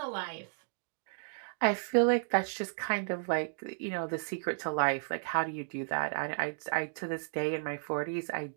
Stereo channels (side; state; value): left; silent; digital silence